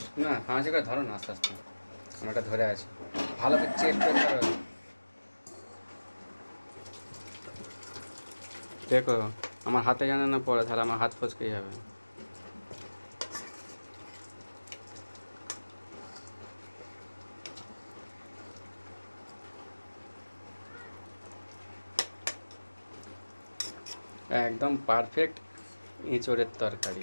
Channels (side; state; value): both; inverted; correlation -1.00